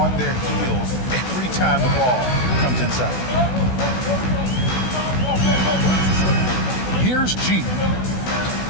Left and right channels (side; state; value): right; late; 16 ms